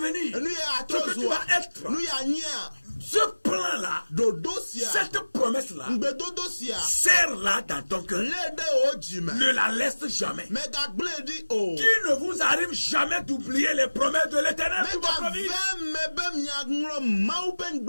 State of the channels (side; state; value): both; inverted; correlation -1.00